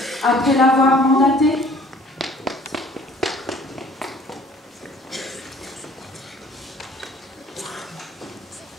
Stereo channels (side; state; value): both; normal; correlation 0.54